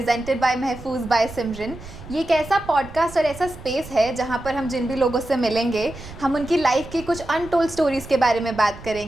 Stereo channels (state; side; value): noise; right; rumble, 15 dB below the sound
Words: by Mahfuz by Simran. ये एक ऐसा पॉडकास्ट और ऐसा स्पेस है जहाँ पर हम जिन भी लोगों से मिलेंगे हम उनकी लाइफ की कुछ अनटोल्ड स्टोरीज़ के बारे में बात